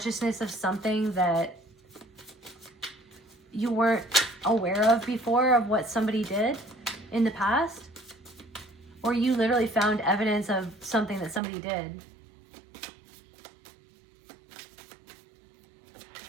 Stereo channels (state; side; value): drops out; left; at 11.4 s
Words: of something that you weren't aware of before, of what somebody did in the past. Or you literally found evidence of something that somebody did.